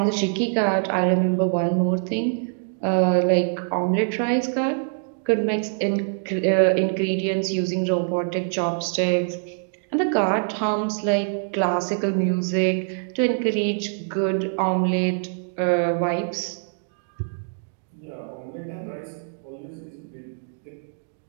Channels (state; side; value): silent; left; digital silence